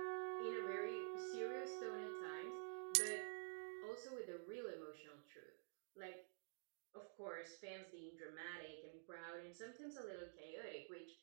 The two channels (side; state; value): left; silent; digital silence